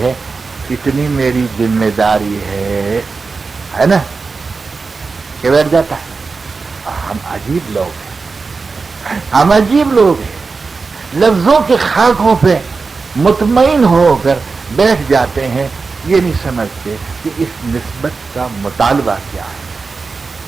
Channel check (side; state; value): left; quieter; 4.4 dB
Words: ہے اتنی میری ذمہ داری ہے نا, کہ بیٹھ جاتا ہے. ہم عجیب لوگ ہیں, ہم عجیب لوگ ہیں, لفظوں کے خاکوں پہ مطمئن ہو کر بیٹھ جاتے ہیں, یہ نہیں سمجھتے کہ اس نسبت کا مطالبہ کیا ہے